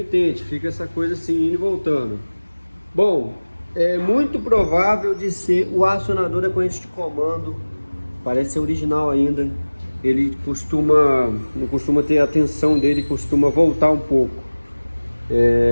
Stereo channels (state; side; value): inverted; both; correlation -1.00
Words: fica essa coisa assim indo e voltando. Bom, é muito provável de ser o acionador da corrente de comando. Parece ser original ainda. Ele não costuma ter a tensão dele, costuma voltar um pouco.